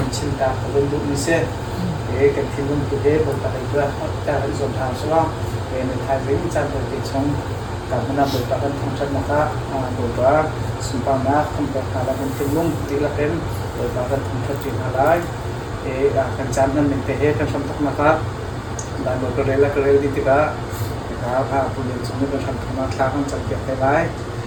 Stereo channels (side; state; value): both; identical; correlation 1.00